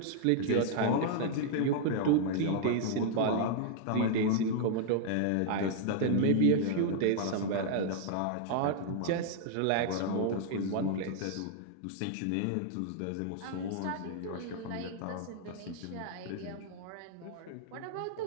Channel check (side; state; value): both; different; correlation -0.01